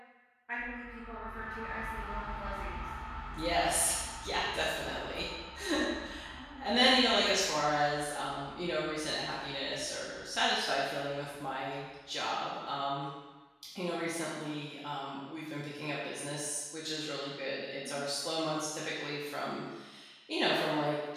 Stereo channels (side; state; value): both; identical; correlation 1.00